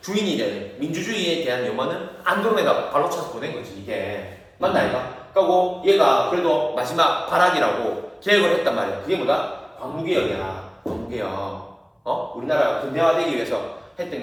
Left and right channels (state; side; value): identical; both; correlation 1.00